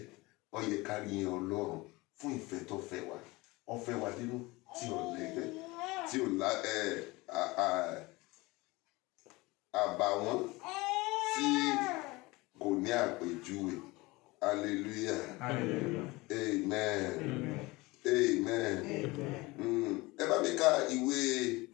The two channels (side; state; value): right; quieter; 22.3 dB